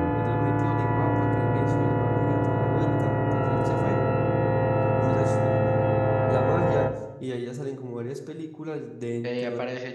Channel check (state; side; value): identical; both; correlation 1.00